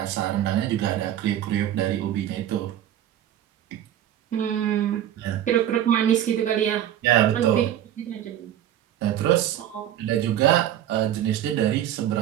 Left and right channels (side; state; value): left; quieter; 11.4 dB